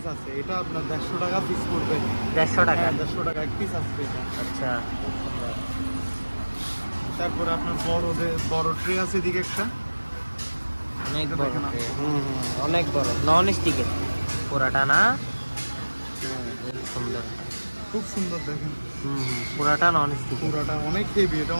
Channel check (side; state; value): both; inverted; correlation -1.00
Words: আছে। এটা আপনার 150 টাকা পিস পড়বে। 150 টাকা। হ্যাঁ, 150 টাকা এক পিস আছে এটা। আচ্ছা তারপরে আপনার বড় ট্রে আছে এদিকে একটা। অনেক এটা বড় দেখেন tray। আপনি। অনেক বড় নন স্টিকের পুরাটা না? খুব সুন্দর। খুব সুন্দর দেখেন। পুরাটা নন স্টিক। পুরাটা অনেক হেভি, এটা